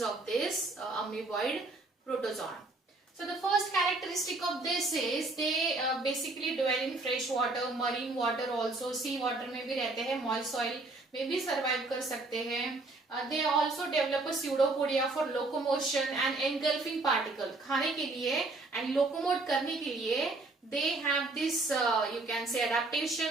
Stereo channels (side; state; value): left; quieter; 3.2 dB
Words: of this amoeboid protozoan. So the first characteristic of this is they basically dwell in fresh water, marine water also, sea water में भी रहते हैं, moist soil में भी survive कर सकते हैं. They also develop a pseudopodia for locomotion and engulfing particle. खाने के लिए and locomote करने के लिए they have this you can say